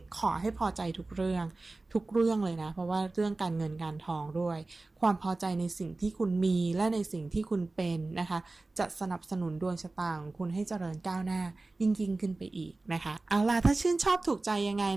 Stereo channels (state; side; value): quieter; left; 3.2 dB